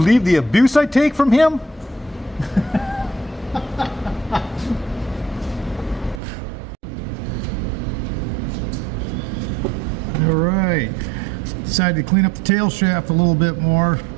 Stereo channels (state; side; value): drops out; left; at 6.2 s